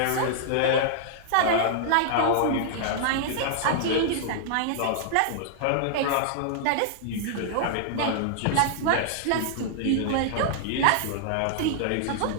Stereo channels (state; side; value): different; both; correlation -0.01